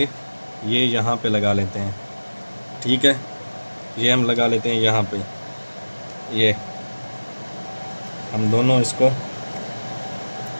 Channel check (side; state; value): both; inverted; correlation -1.00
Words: ये यहाँ पे लगा लेते हैं, ठीक है। ये हम लगा लेते हैं यहाँ पे, ये हम दोनों इसको